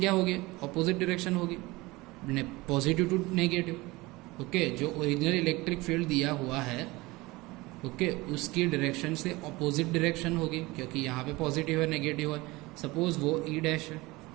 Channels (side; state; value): left; quieter; 21.7 dB